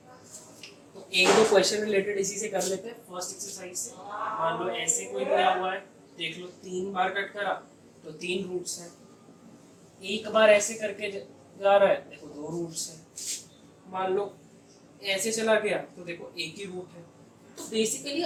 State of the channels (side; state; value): both; identical; correlation 1.00